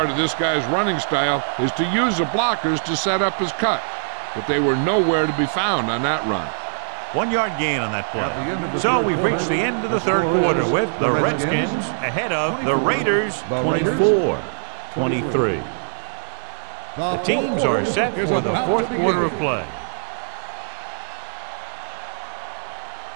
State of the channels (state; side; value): silent; left; digital silence